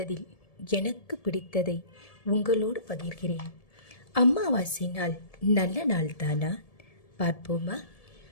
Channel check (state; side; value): late; right; 1.7 ms